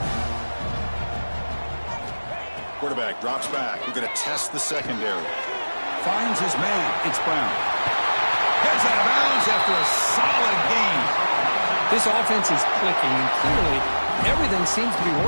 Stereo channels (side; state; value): both; inverted; correlation -1.00